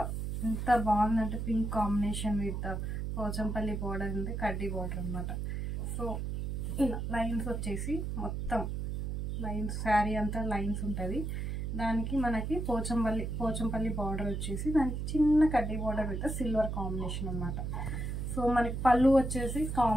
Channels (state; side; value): noise; right; hum, 3 dB below the sound